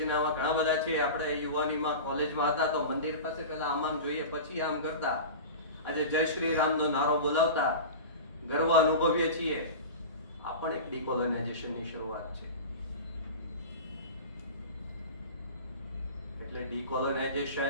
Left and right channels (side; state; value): both; inverted; correlation -0.31